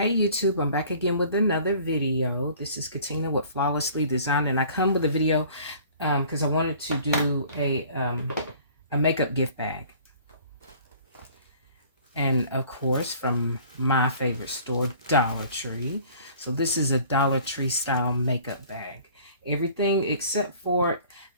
YouTube, I'm back again with another video. This is Katina with Flawlessly Designed, and I come with a video because I wanted to do a makeup gift bag. And of course, from my favorite store, Dollar Tree. So this is a Dollar Tree style makeup bag. Everything except for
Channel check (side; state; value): both; inverted; correlation -0.51